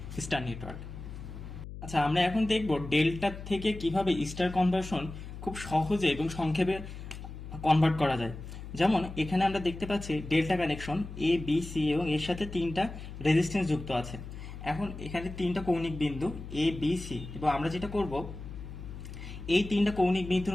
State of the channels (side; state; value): left; noise; hum, 11 dB below the sound